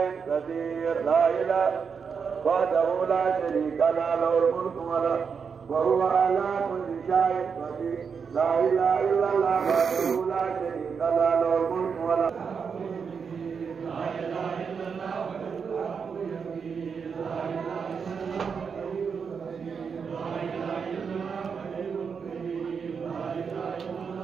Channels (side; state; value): left; quieter; 6.1 dB